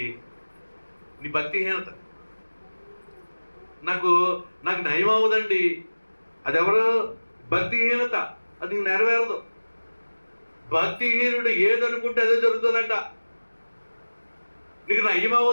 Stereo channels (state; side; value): inverted; both; correlation -1.00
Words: నీ భక్తిహీనత. నాకు నయం అవ్వదండి, అది ఎవరు? భక్తిహీనత. అది నీకు నెరవేరదు. భక్తిహీనుడు ఏదనుకుంటే అదే జరుగుతుందంట. నీకు నయం